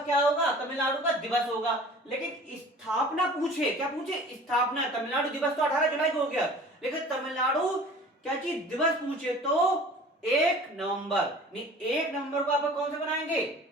क्या होगा? तमिलनाडु का दिवस होगा। लेकिन स्थापना पूछे, क्या पूछे? स्थापना। तमिलनाडु दिवस तो 18 जुलाई को हो गया, लेकिन तमिलनाडु क्या चीज दिवस पूछे तो 1 नवंबर। नहीं, 1 नवंबर को आप कौन सा बनाएंगे?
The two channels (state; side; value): normal; both; correlation 0.45